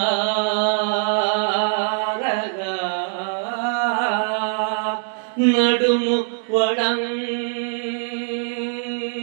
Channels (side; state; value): left; silent; 64 dB below the other